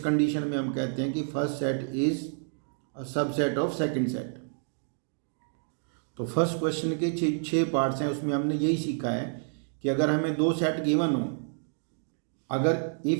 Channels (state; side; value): silent; left; digital silence